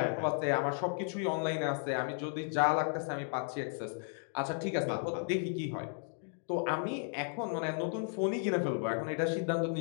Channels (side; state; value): right; silent; 55 dB below the other